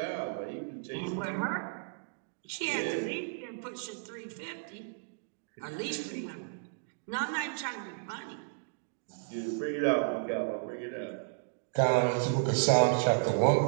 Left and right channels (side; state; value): left; silent; digital silence